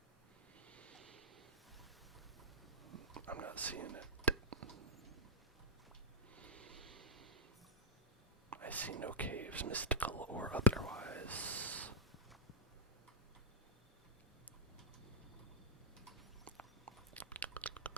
I'm not seeing it. I see no caves, mystical or otherwise.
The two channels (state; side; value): normal; both; correlation -0.09